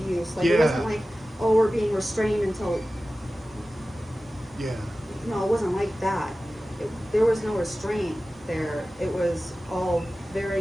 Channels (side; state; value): both; normal; correlation 0.96